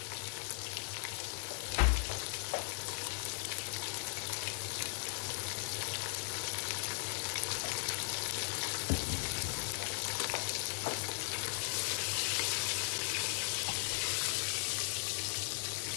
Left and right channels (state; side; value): silent; right; 53 dB below the other